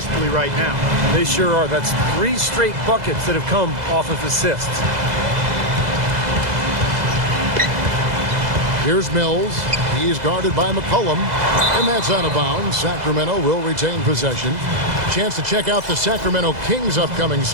right now. They sure are. That's 3 straight buckets that have come off of assists. Here's Mills. He is guarded by McCollum. And that's out of bounds. Sacramento will retain possession. Chance to check out the Sacramento Kings' upcoming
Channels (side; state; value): left; late; 2.0 ms